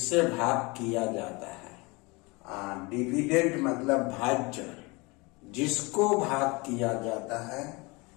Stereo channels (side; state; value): right; quieter; 25.9 dB